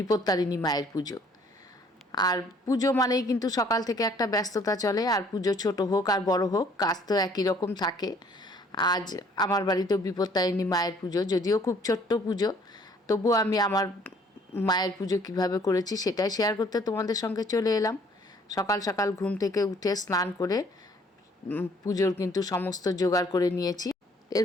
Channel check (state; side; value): normal; both; correlation 0.59